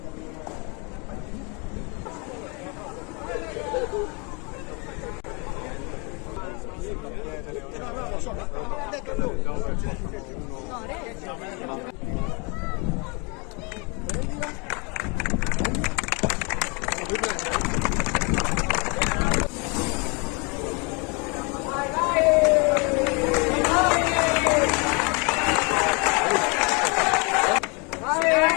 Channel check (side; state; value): right; quieter; 31.5 dB